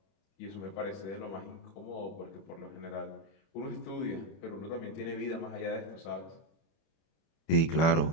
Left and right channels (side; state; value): right; late; 31 ms